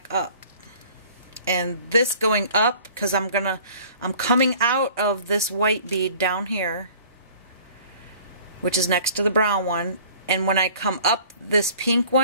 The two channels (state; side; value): inverted; both; correlation -0.50